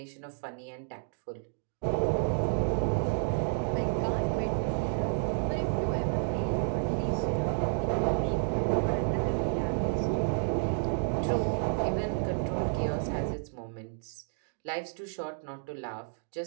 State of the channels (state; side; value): silent; left; digital silence